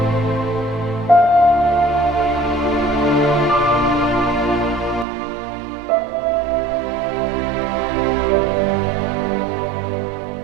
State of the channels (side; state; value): left; drops out; at 5.1 s